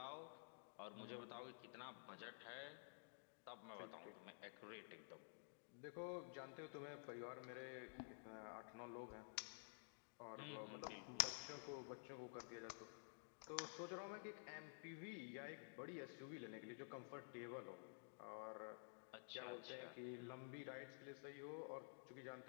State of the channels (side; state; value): right; silent; digital silence